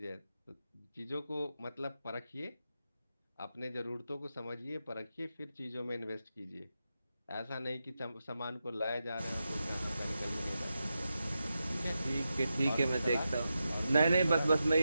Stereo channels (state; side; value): inverted; both; correlation -0.89